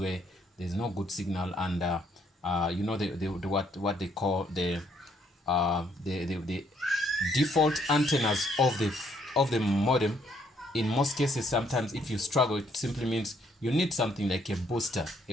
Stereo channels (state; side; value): normal; both; correlation 0.69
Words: there's no good signal and you know what they call the default antennas of the modem. In most cases, sometimes if you struggle, it simply means you need something like a booster, a